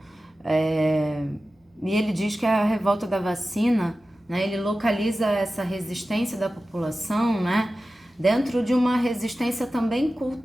e ele diz que a revolta da vacina, né, ele localiza essa resistência da população, né, dentro de uma resistência também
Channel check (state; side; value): normal; both; correlation 0.94